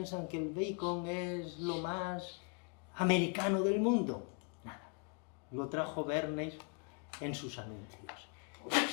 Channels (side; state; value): right; quieter; 36.8 dB